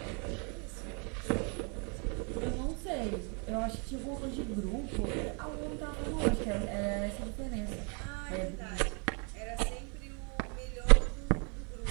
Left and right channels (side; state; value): left; quieter; 35.8 dB